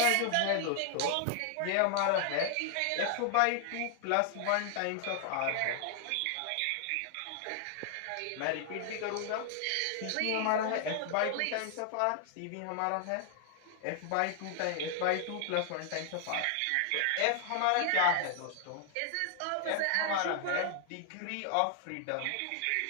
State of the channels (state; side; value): different; both; correlation 0.00